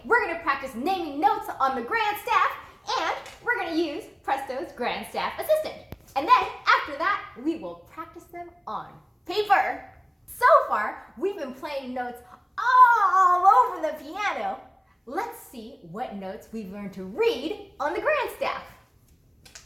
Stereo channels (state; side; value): identical; both; correlation 1.00